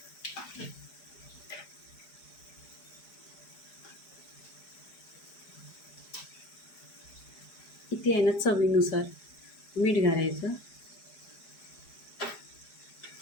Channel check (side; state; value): right; late; 4.9 ms